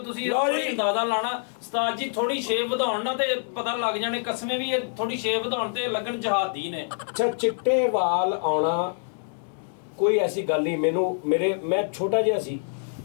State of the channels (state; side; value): silent; right; digital silence